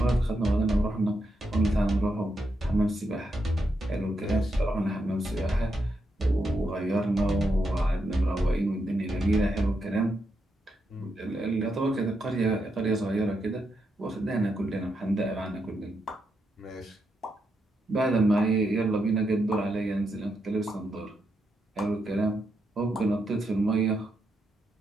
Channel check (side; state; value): both; normal; correlation 0.82